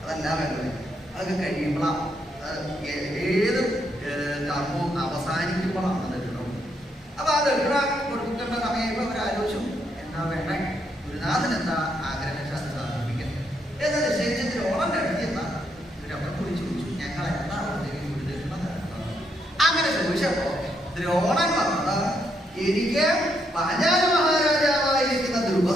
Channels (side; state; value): both; normal; correlation 0.76